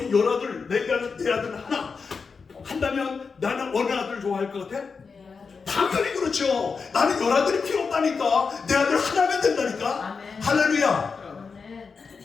열아들, 내 아들 하나 한다면 나는 어느 아들 좋아할 것 같아? 당연히 그렇죠. 나는 열아들이 필요 없다니까. 내 아들 하나면 된다니까. 아멘. 할렐루야.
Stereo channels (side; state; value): right; quieter; 5.1 dB